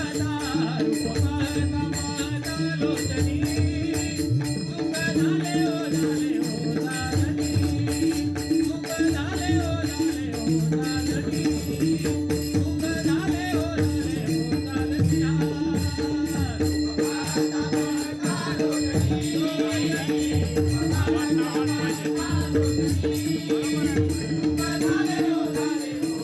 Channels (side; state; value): both; identical; correlation 1.00